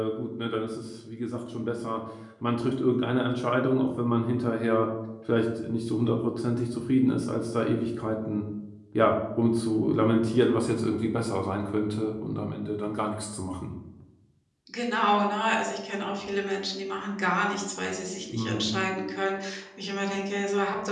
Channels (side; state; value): both; identical; correlation 1.00